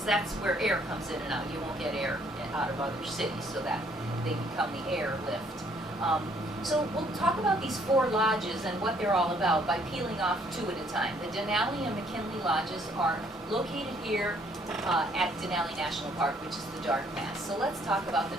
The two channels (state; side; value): normal; both; correlation 0.64